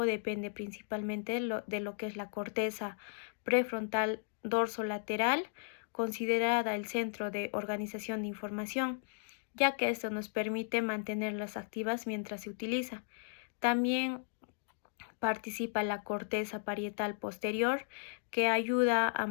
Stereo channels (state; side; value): silent; right; digital silence